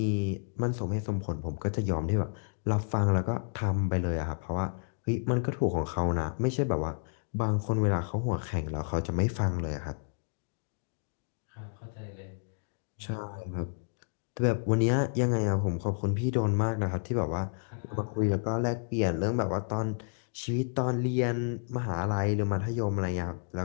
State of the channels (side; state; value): right; silent; digital silence